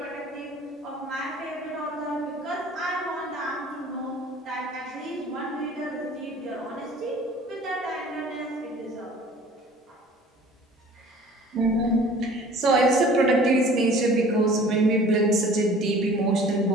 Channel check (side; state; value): both; normal; correlation 0.48